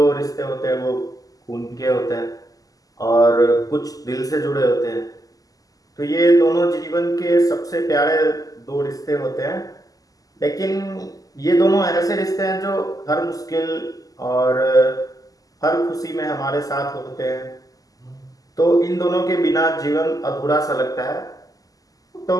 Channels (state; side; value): late; right; 0.17 ms